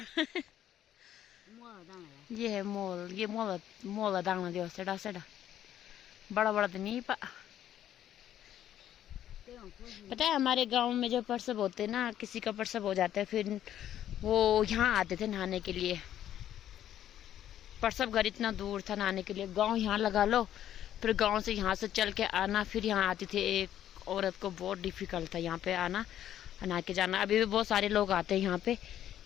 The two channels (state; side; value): quieter; right; 11.3 dB